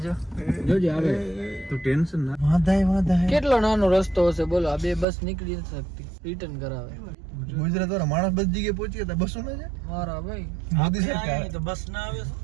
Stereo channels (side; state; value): left; drops out; at 5.1 s